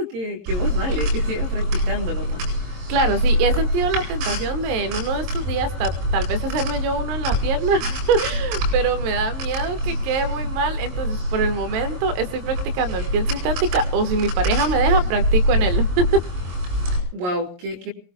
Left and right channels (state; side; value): late; left; 23 ms